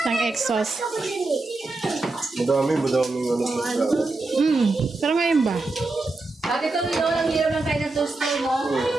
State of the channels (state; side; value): quieter; left; 3.3 dB